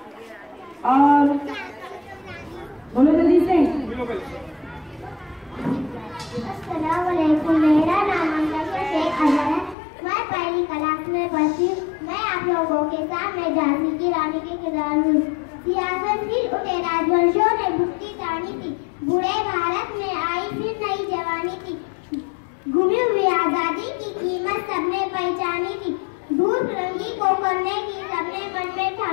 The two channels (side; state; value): right; drops out; at 9.8 s